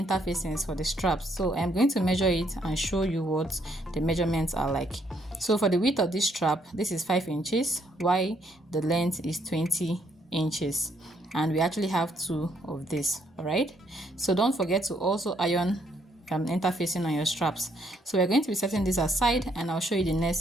for the straps, so I'm going to measure it and show you what the measurements are like. So for the width of this strap, this is 5 inches, while the length is 20 inches, and we actually have two of this. All right, so don't forget to also iron interfacing on your straps. So we're going to be setting this aside, and I'll show you the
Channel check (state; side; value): normal; both; correlation 0.71